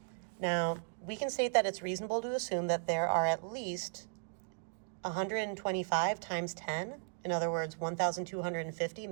Now, we can state that it's reasonable to assume that there are at least 125 times 10, in other words, 1,250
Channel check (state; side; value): silent; left; digital silence